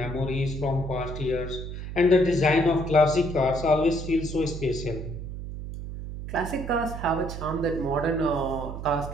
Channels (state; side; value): noise; right; hum, 8 dB below the sound